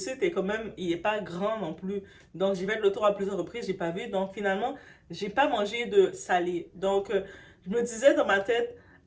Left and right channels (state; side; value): identical; both; correlation 1.00